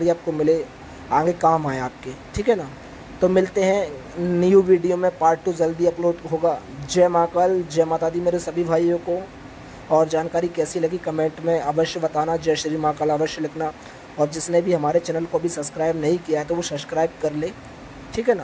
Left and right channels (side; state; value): both; identical; correlation 1.00